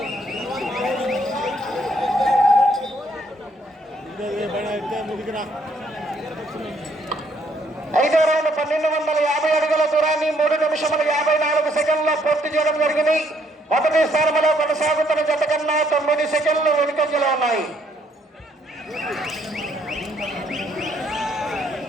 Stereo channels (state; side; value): normal; both; correlation 0.69